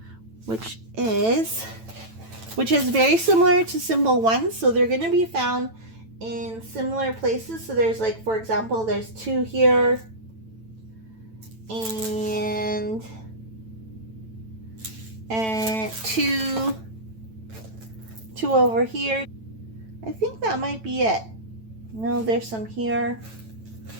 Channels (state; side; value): late; left; 9.0 ms